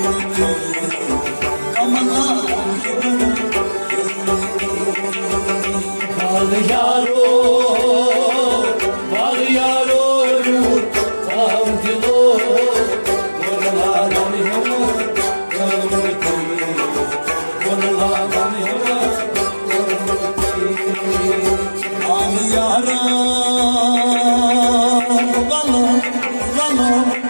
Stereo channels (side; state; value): both; inverted; correlation -1.00